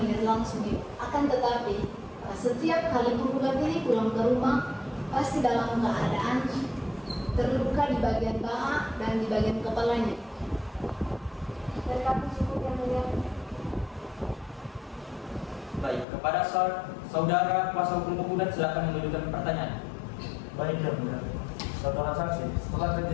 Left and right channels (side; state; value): right; drops out; at 16.1 s